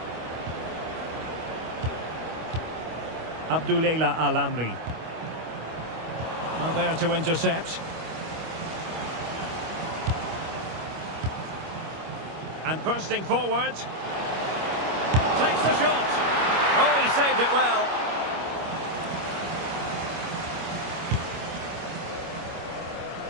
Abdulela Al-Amri. Well, there to intercept. And bursting forward. Takes the shot. Oh, he saved it well.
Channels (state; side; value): late; left; 25 ms